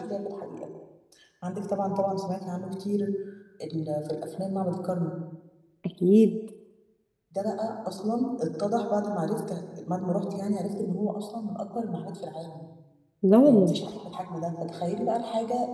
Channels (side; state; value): both; identical; correlation 1.00